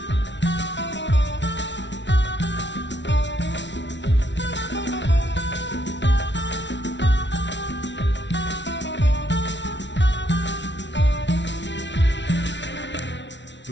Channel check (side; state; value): right; late; 0.52 ms